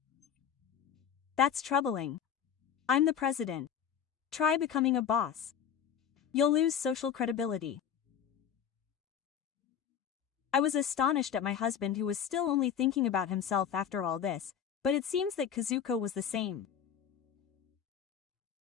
That's troubling. I'm the president. Try becoming a boss. You'll lose social credibility. I was astonished at my husband, who was still only thinking about himself after all this, but it seems that Kazuko was the same.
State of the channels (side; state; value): right; quieter; 8.3 dB